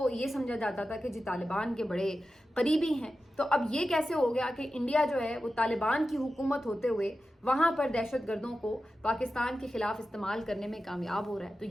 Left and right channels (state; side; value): normal; both; correlation 0.92